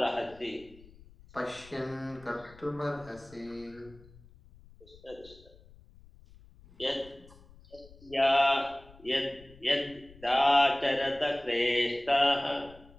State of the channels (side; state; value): left; noise; rumble, 23 dB below the sound